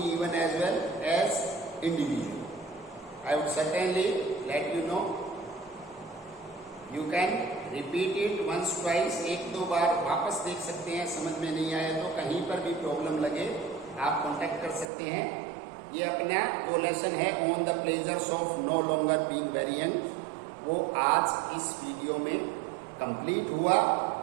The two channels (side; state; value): left; drops out; at 14.9 s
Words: even as well as individual. I would certainly let you know. You can repeat it once, twice, एक दो बार वापस देख सकते हैं। समझ में नहीं आया तो कहीं पर भी प्रॉब्लम लगे आप कांटेक्ट कर सकते हैं। ये अपना जो लेसन है on the pleasures of no longer being very young, वो आज इस वीडियो में कंप्लीट हुआ।